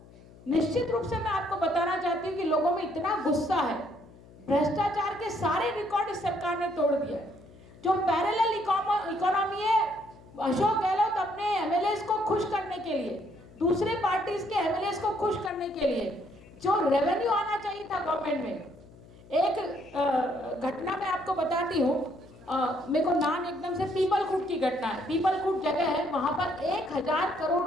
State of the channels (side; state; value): left; noise; hum, 22 dB below the sound